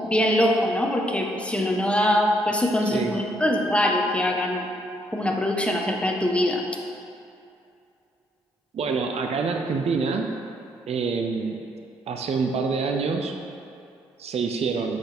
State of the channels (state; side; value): normal; both; correlation 0.71